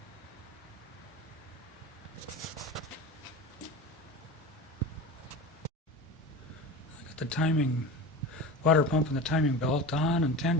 got the timing, water pump and the timing belt on and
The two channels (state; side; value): normal; both; correlation 0.29